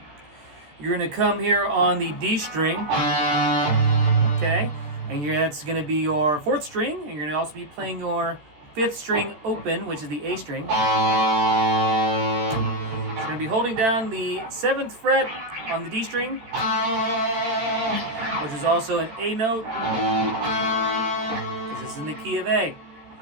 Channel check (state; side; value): late; left; 13 ms